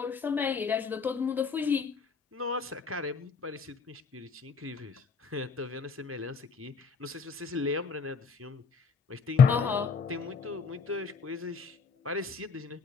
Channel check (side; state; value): right; quieter; 5.4 dB